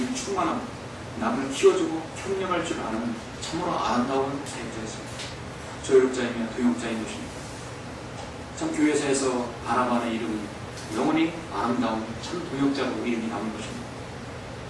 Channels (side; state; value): both; identical; correlation 1.00